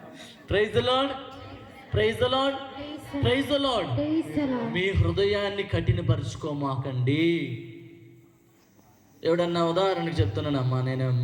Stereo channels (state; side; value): identical; both; correlation 1.00